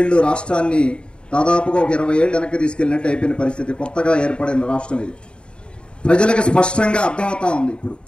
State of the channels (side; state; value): right; late; 0.053 ms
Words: రాష్ట్రాన్ని దాదాపుగా ఒక 20 ఏళ్ళు వెనక్కి తీసుకెళ్ళినట్టు అయిపోయిన పరిస్థితి. కొత్తగా ఏర్పడిన రాష్ట్రం ఇది. ప్రజలకు స్పష్టంగా అర్థమవుతా ఉంది. ఇప్పుడు